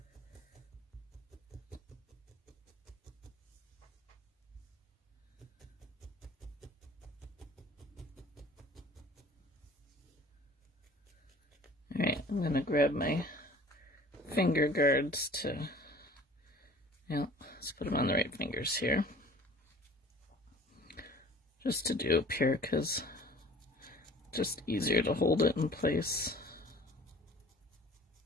All right, I'm going to grab my finger guards to, let's put them on the right fingers here. Just to do up here because just easier to hold it in place.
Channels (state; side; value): normal; both; correlation 0.47